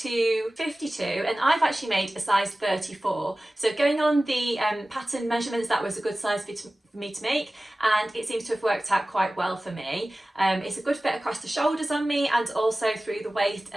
52, and I've actually made a size 34. So going on the pattern measurements, that was a good size for me to make, and it seems to have worked out quite well for me. It's a good fit across the shoulders on me and also through the waist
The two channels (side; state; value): both; normal; correlation 0.97